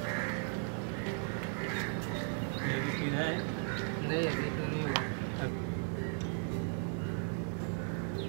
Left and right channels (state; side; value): silent; left; 53 dB below the other